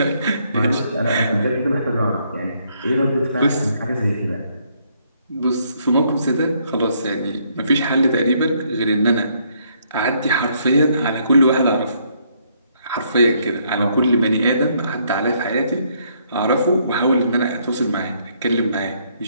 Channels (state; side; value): inverted; both; correlation -0.70